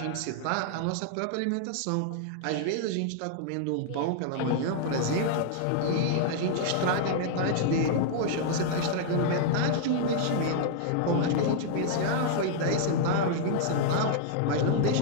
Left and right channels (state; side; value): different; both; correlation -0.01